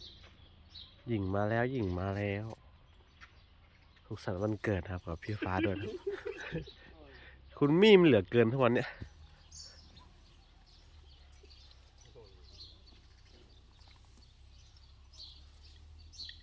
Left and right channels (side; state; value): both; identical; correlation 1.00